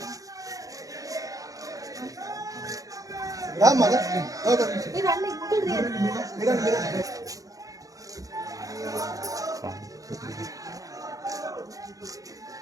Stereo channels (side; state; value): left; late; 0.17 ms